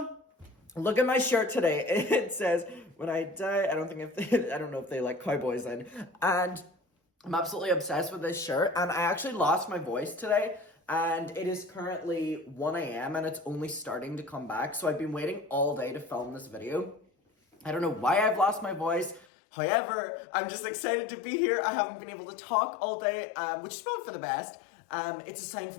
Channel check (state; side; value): drops out; right; at 19.2 s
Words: look at my shirt today. It says, "When I die," I don't know if they like cowboys in, and I'm absolutely obsessed with this shirt, and I actually lost my voice today. And it is currently 1 a.m. and it's only starting to come back. So I've been waiting all day to film this video. I don't know why I've lost my voice. However, I'm just excited to be here. I haven't been able to talk all day, which is probably for the best. It's a sign